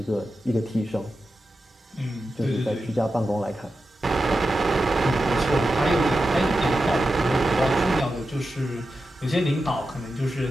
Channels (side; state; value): both; normal; correlation 0.91